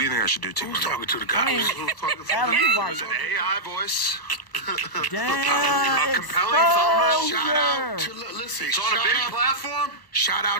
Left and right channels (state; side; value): late; right; 1.0 ms